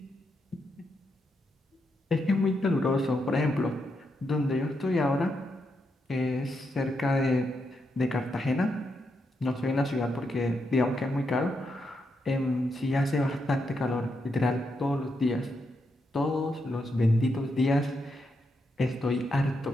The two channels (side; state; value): both; normal; correlation 0.82